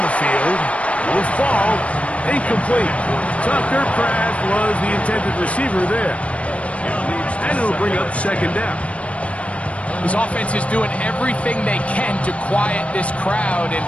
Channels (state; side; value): late; right; 0.063 ms